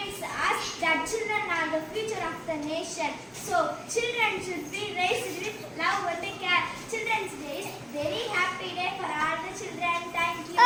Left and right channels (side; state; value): both; identical; correlation 1.00